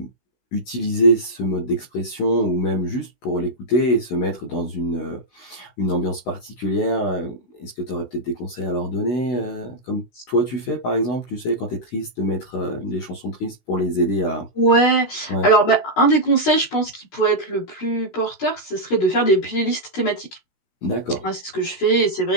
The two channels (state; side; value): late; right; 16 ms